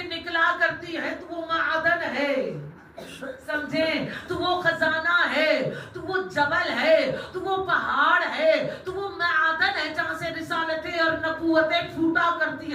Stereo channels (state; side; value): identical; both; correlation 1.00